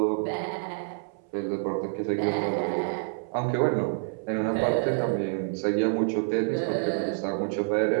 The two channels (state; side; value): silent; left; 60 dB below the other